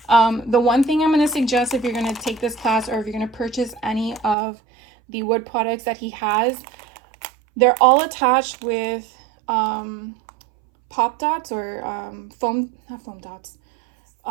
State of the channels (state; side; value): drops out; left; at 4.4 s